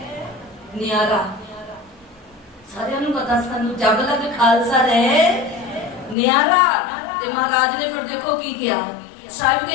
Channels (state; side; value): drops out; right; at 6.2 s